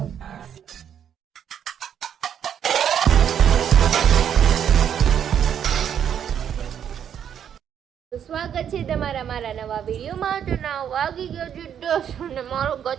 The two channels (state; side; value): quieter; left; 8.9 dB